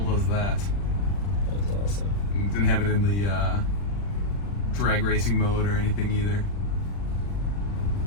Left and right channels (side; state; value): right; late; 40 ms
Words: does that. That was awesome. It didn't have it in the drag racing mode or anything either.